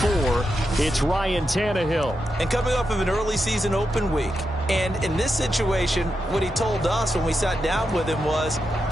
It's Ryan Tannehill. And coming off of an early season open week. And in this situation, what he told us when we sat down with him was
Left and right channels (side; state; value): both; normal; correlation 0.86